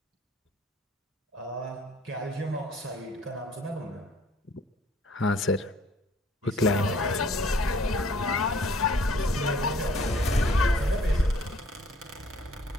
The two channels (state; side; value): normal; both; correlation 0.58